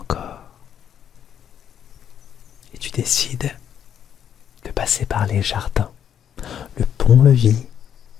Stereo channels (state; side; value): quieter; right; 9.0 dB